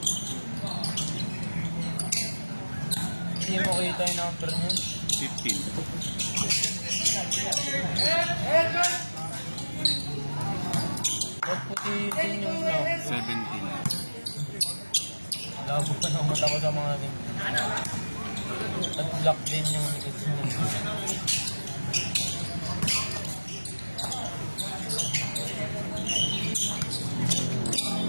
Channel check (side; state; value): both; inverted; correlation -1.00